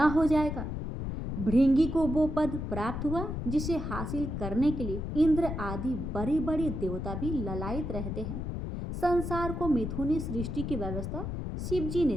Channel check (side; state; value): left; noise; rumble, 4 dB below the sound